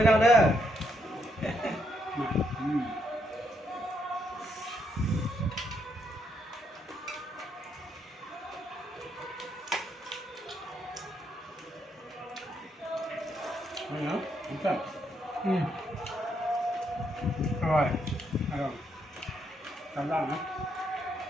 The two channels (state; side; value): normal; both; correlation 0.76